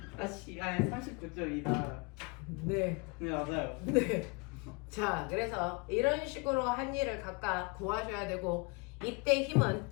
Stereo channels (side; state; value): right; quieter; 30.0 dB